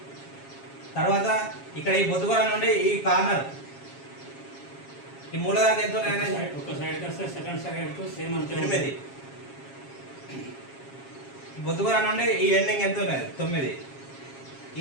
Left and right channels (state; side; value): late; right; 7.3 ms